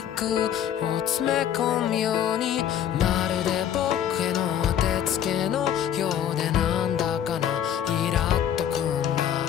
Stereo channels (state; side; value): quieter; right; 9.9 dB